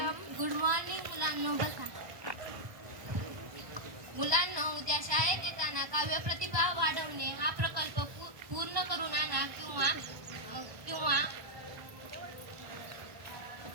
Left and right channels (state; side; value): late; left; 1.1 ms